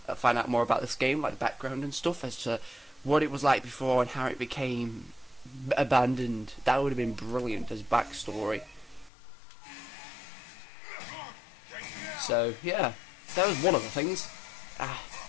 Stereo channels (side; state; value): right; drops out; at 9.1 s